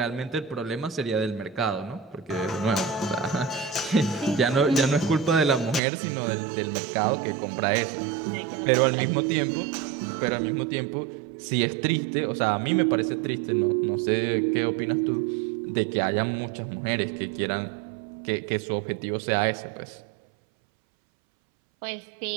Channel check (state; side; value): drops out; left; at 5.8 s